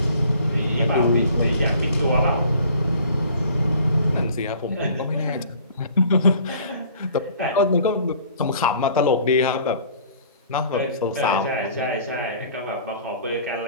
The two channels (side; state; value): both; inverted; correlation -0.51